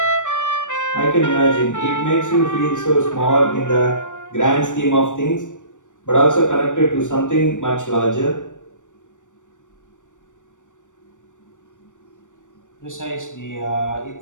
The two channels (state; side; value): late; right; 0.86 ms